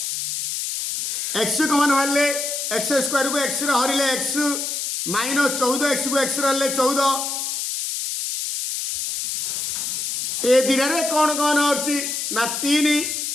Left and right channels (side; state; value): left; noise; hiss, 3 dB below the sound